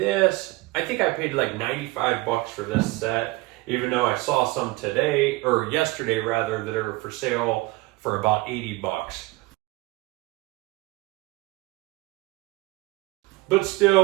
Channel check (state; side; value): quieter; left; 21.4 dB